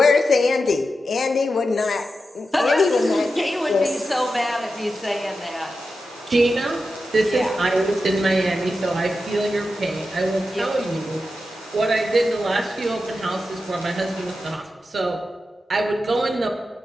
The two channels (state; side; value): normal; both; correlation 0.90